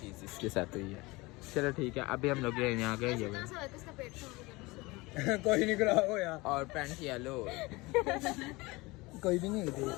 इसके साथ हुई है चलो ठीक है अभी हम लोग यहाँ गए ये किसका पेट कोई नहीं खराब हो यार और पैंट येलो कोई भी नहीं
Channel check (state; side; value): quieter; right; 22.9 dB